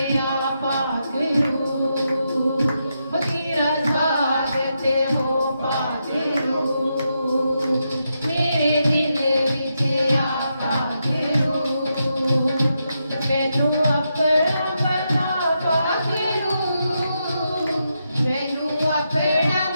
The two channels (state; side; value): inverted; both; correlation -0.84